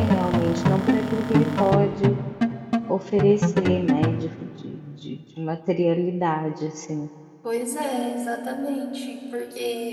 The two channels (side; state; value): both; identical; correlation 1.00